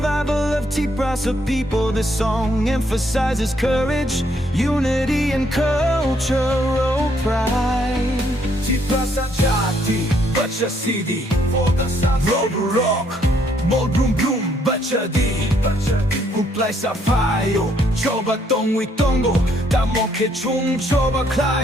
of Tiprasa people. This song emphasizes courage, unity, and cultural pride. Tiprasa jati, bachasidi, kokborok, brum brum, bachasidi. Uplay sa payo, coba tongwi tongo, tamoke chung coba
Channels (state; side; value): normal; both; correlation 0.70